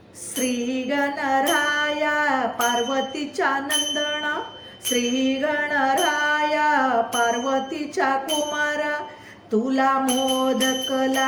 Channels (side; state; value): both; identical; correlation 1.00